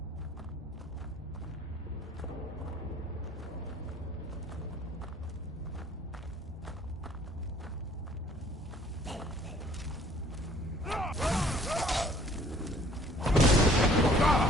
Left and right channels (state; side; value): normal; both; correlation 0.56